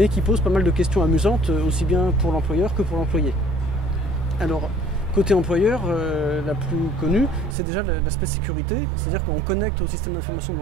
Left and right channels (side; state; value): left; drops out; at 7.6 s